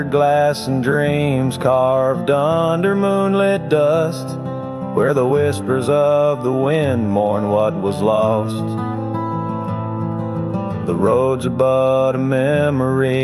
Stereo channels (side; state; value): both; identical; correlation 1.00